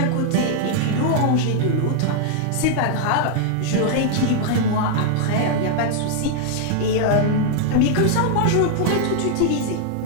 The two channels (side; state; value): both; different; correlation -0.01